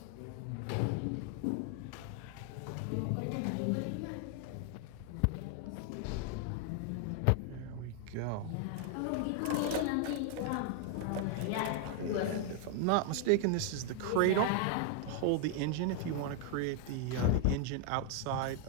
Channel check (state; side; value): different; both; correlation 0.00